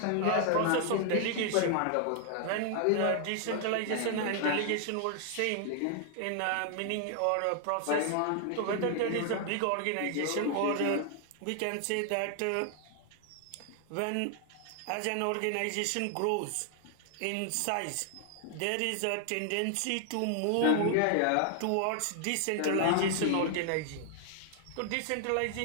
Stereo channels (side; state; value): both; different; correlation 0.00